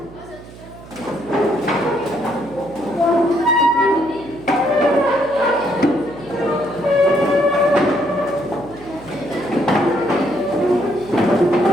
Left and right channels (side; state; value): right; noise; hum, 18 dB below the sound